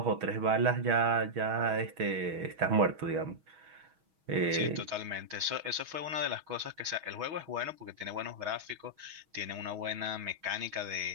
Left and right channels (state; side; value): late; left; 6.3 ms